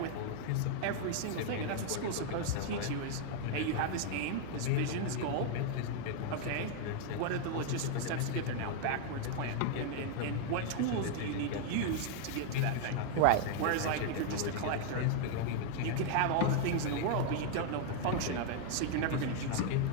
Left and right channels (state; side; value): different; both; correlation 0.00